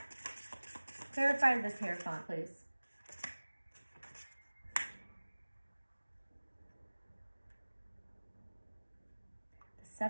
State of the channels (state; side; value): inverted; both; correlation -1.00